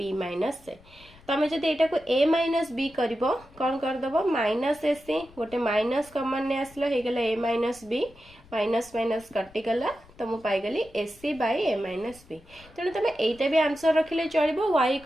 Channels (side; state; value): left; noise; rumble, 25 dB below the sound